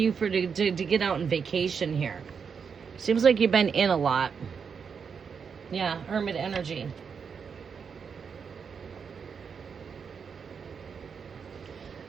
to get out on vacation here. Seems like you've been in a lot. Yeah, Hermit energy.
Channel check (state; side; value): quieter; left; 6.3 dB